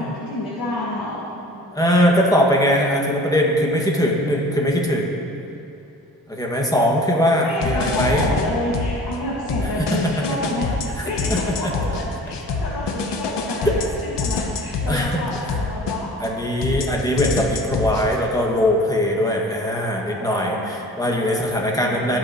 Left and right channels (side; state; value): both; normal; correlation 0.46